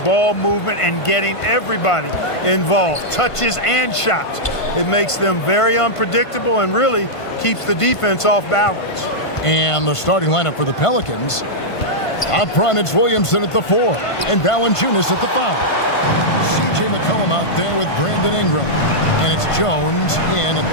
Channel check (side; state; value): right; late; 1.5 ms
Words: ball movement, and getting everybody involved, touches and shots. It makes them very unpredictable and really keeps the defense off balance. And the starting lineup for the Pelicans. Up front, it's Williamson at the 4 and Valanciunas at the 5. C.J. McCollum out there with Brandon Ingram. And it's Jones in